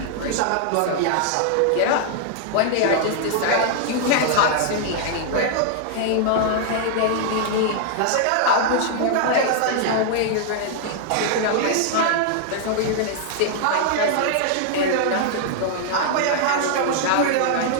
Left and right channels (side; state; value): both; different; correlation -0.01